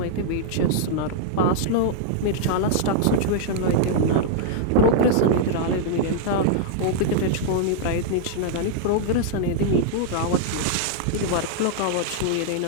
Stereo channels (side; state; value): both; different; correlation -0.01